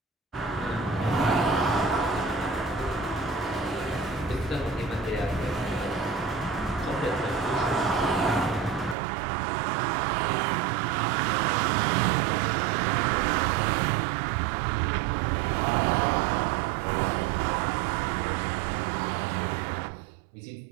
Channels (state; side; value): drops out; left; at 9.0 s